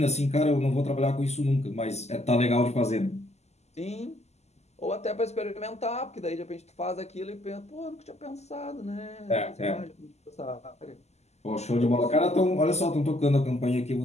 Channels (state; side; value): late; right; 0.32 ms